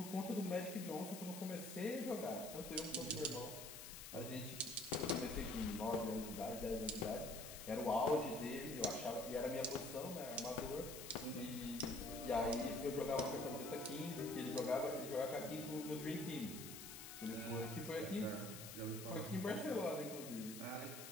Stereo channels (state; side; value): noise; left; hiss, 10 dB below the sound